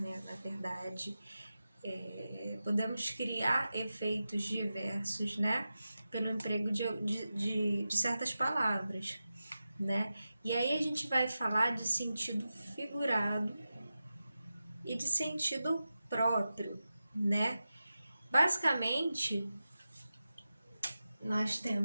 na verdade, podemos criar efeitos diversos, né, pelo emprego de certas palavras, né? E aí a gente vai falar de sentido figurado e de sentido próprio, né? Basicamente, nós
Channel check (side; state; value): both; inverted; correlation -0.93